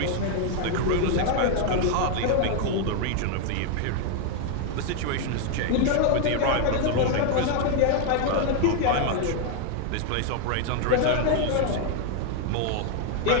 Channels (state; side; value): different; both; correlation 0.00